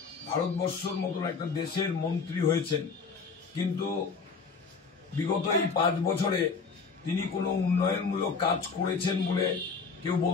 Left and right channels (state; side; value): quieter; right; 5.0 dB